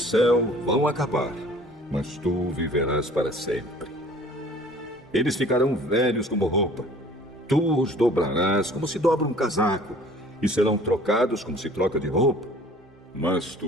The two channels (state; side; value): normal; both; correlation 0.50